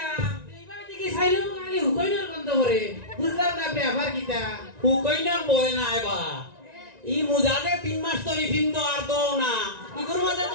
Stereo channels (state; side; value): late; left; 1.9 ms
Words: এইবার দিকে সাইলাম খালি হুকইনার গন্ধ করে বুঝলাম না ব্যাপার কিতা হুকইনার বয় না এবা ই মুজাদে 3 মাস তরি ফিন্দ আর দো না ইগুর মাঝে